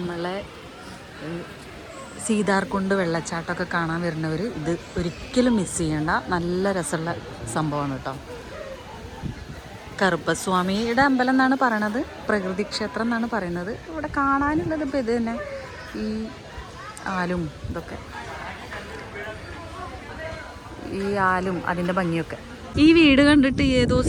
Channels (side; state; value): both; identical; correlation 1.00